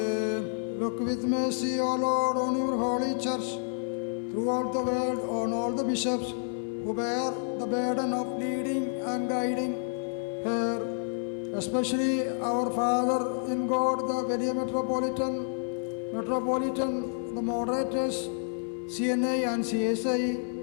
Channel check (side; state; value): right; silent; 58 dB below the other